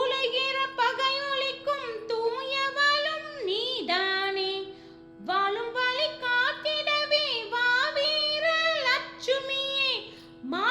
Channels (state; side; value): identical; both; correlation 1.00